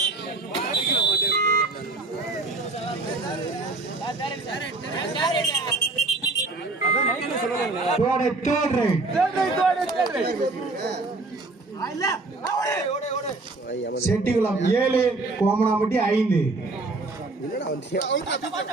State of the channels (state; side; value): quieter; left; 3.3 dB